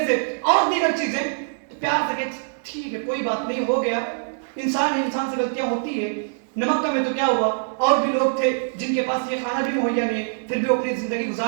سے اور دیگر چیزیں، تو پیار سے کہ ٹھیک ہے کوئی بات نہیں، ہو گیا، انسان ہے، انسان سے غلطیاں ہوتی ہے، نمک کم ہے تو کیا ہوا. اور بھی لوگ تھے جن کے پاس یہ کھانا بھی مہیا نہیں ہے، پھر بھی وہ اپنی زندگی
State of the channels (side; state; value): left; silent; digital silence